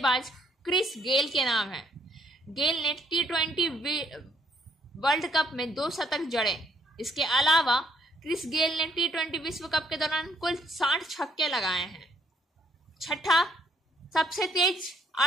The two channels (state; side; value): normal; both; correlation 0.69